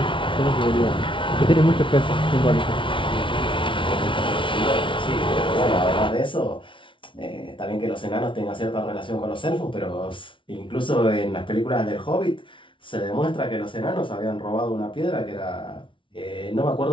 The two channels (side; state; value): right; late; 0.25 ms